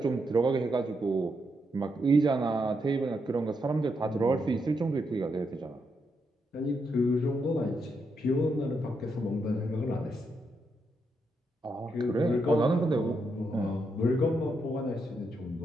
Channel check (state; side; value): normal; both; correlation 0.81